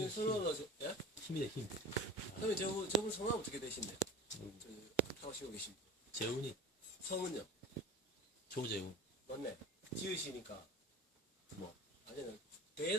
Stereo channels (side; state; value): both; normal; correlation 0.35